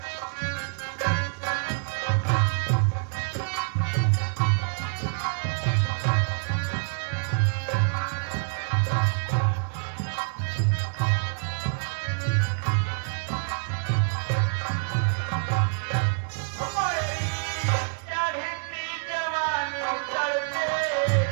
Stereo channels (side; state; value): left; silent; 60 dB below the other